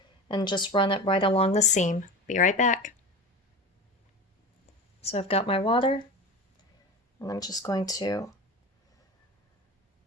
and just run it right along the seam. Be right back. So I've got my water, and I'm just going to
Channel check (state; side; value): normal; both; correlation 0.30